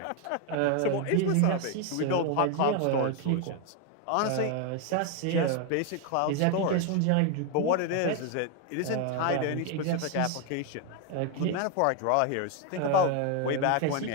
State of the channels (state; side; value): different; both; correlation 0.01